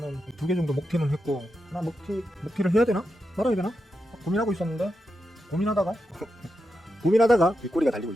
2개 정도 먹튀는 했고 하나 먹튀를 해야 되나? 말아야 되나? 고민하고 있었는데 고민하다가 뒷꼬리가 달리고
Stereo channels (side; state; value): both; normal; correlation 0.87